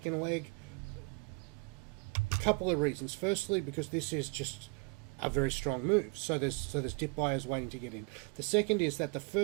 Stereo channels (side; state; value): left; quieter; 31.3 dB